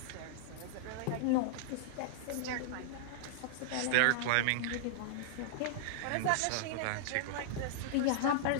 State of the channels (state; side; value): different; both; correlation -0.01